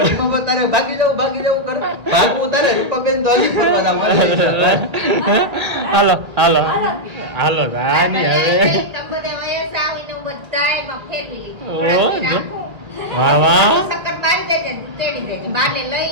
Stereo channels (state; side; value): late; left; 1.8 ms